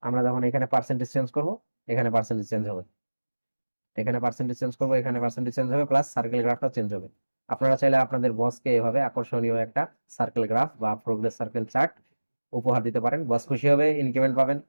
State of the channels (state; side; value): inverted; both; correlation -1.00